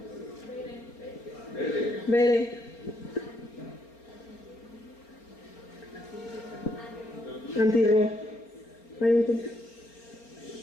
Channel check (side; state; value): right; late; 4.3 ms